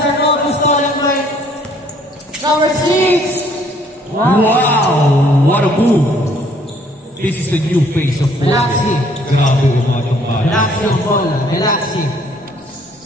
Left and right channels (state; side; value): normal; both; correlation 0.61